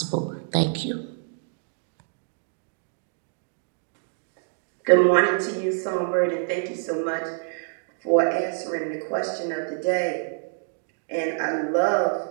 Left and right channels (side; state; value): left; silent; digital silence